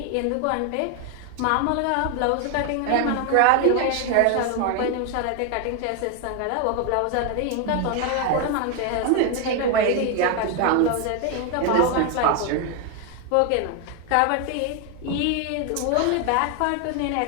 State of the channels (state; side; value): different; both; correlation 0.01